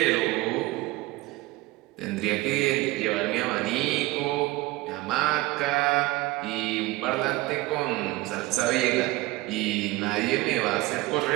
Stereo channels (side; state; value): left; quieter; 19.7 dB